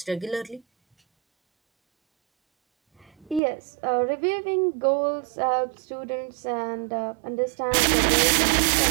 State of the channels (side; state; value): left; drops out; at 3.4 s